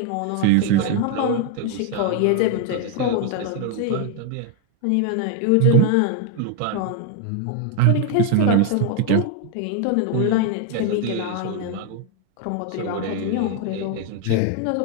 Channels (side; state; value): both; different; correlation 0.01